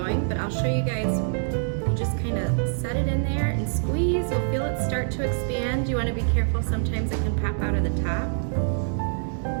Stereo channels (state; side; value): silent; left; digital silence